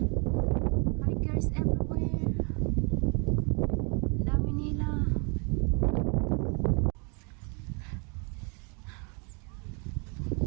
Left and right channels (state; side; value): quieter; left; 34.6 dB